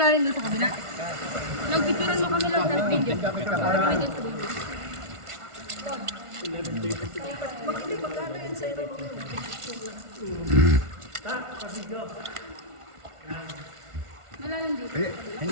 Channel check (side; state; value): left; late; 1.5 ms